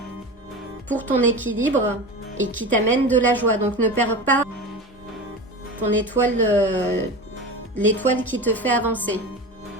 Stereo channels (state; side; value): normal; both; correlation 0.29